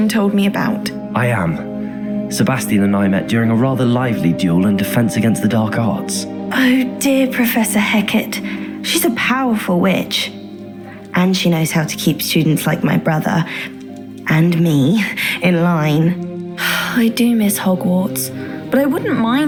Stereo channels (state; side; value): identical; both; correlation 1.00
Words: told me about. I am. Sebastian and I met during a rather lively duel in defense against the dark arts. Oh dear, Professor Hecat. She's a powerful witch. And she knows how to keep students like my brother, and me, in line. I do miss Hogwarts, but I wouldn't